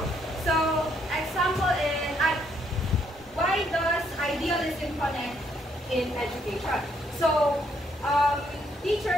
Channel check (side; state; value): both; normal; correlation 0.71